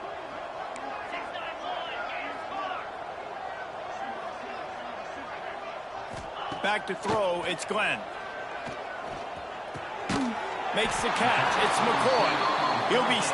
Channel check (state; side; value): identical; both; correlation 1.00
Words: Back to throw, it's Glenn. Makes the catch, it's McCoy. He'll be